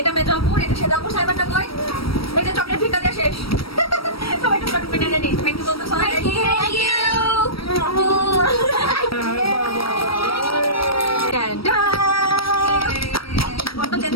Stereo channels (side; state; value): right; late; 0.75 ms